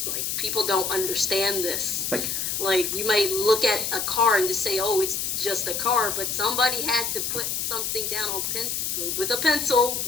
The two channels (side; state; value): left; noise; hiss, 1 dB below the sound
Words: Like people don't understand this. It's like, Like you might look at a car and just say, "Oh, it's just a car," but somebody had to put something down on with a pencil